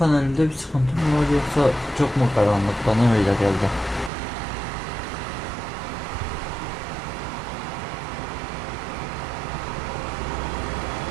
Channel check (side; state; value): left; drops out; at 4.1 s